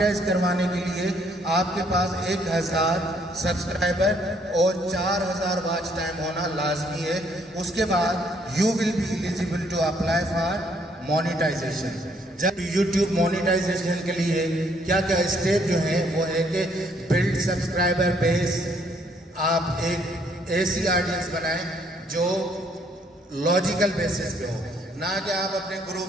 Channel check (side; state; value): both; normal; correlation 0.67